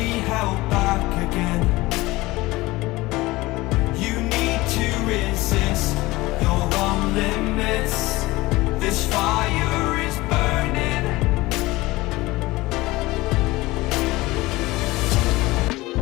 held back again. You need to resist your own limits. This fire is burning.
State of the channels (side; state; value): right; quieter; 20.2 dB